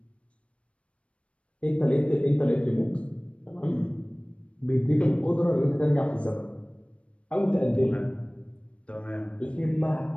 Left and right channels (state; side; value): late; right; 0.061 ms